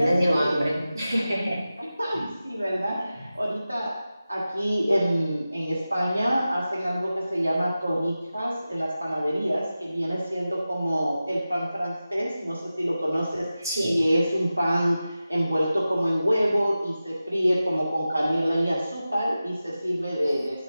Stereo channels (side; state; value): both; inverted; correlation -0.94